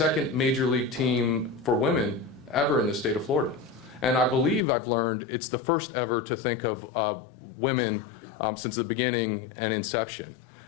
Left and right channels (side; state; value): right; drops out; at 4.6 s